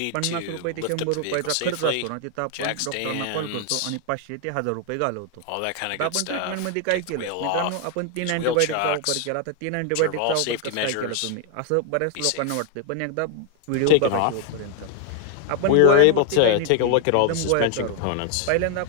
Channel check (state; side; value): different; both; correlation 0.00